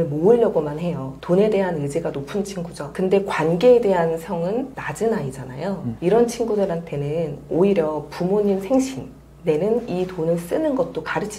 모으려고만 해요. 돈에 대한 의지가 높은 친구죠. 근데 관계에 대한 성은 낮은 아이잖아요. 이런 친구들한테는 오히려 부모님 생신, 내는 이 돈을 쓰는 것도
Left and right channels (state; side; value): identical; both; correlation 1.00